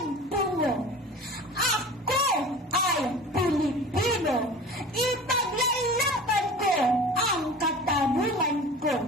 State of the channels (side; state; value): both; normal; correlation 0.39